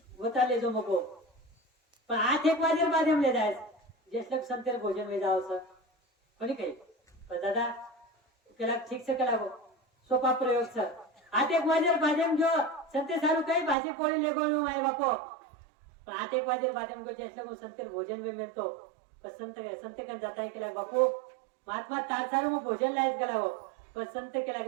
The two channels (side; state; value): left; drops out; at 13.8 s